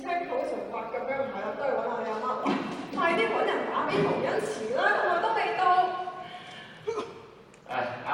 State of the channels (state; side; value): identical; both; correlation 1.00